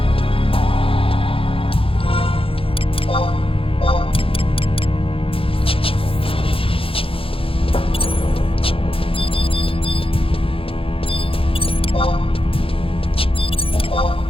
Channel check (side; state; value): right; late; 0.27 ms